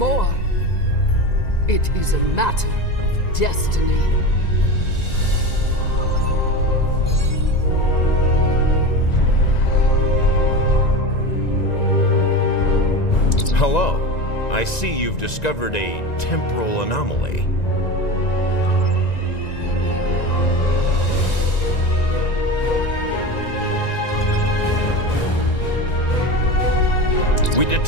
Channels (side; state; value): right; late; 1.9 ms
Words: It is a matter of destiny. Hello. I see you've discovered a temporal anomaly. We